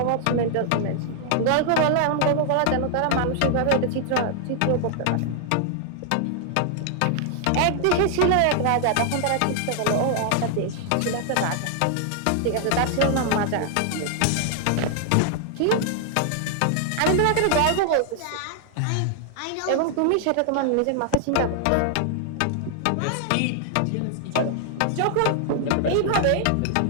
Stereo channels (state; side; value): different; both; correlation 0.00